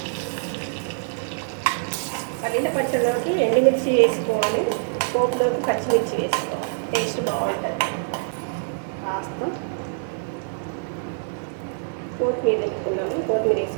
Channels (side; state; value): left; silent; 62 dB below the other